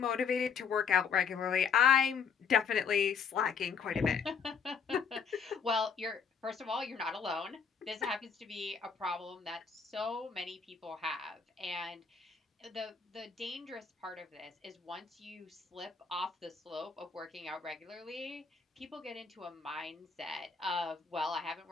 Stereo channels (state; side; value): quieter; right; 6.1 dB